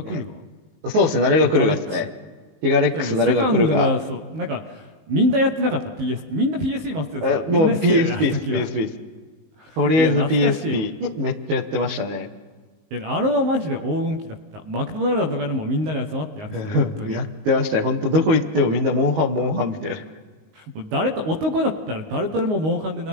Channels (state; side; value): late; left; 19 ms